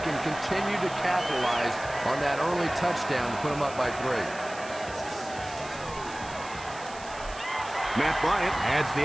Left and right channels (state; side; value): noise; right; hiss, 16 dB below the sound